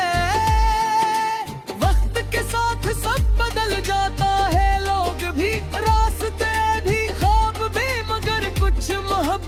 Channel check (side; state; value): both; identical; correlation 1.00